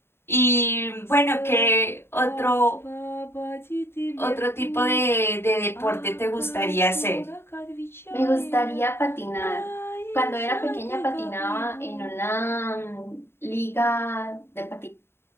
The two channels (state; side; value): late; right; 0.11 ms